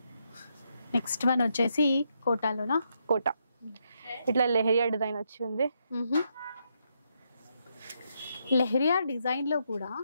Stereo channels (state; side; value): inverted; both; correlation -0.79